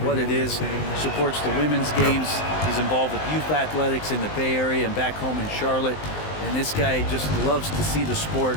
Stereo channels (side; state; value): right; late; 19 ms